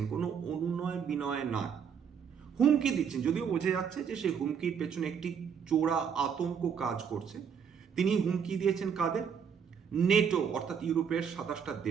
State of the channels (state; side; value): quieter; left; 7.2 dB